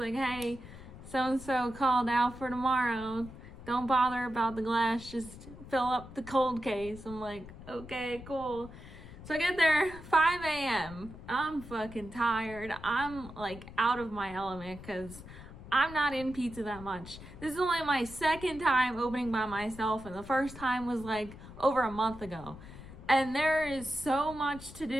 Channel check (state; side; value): noise; left; rumble, 15 dB below the sound